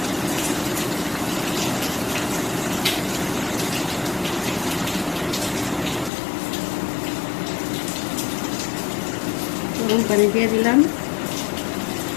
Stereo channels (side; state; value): right; drops out; at 6.1 s